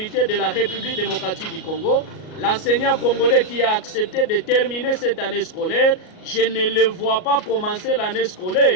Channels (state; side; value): late; right; 38 ms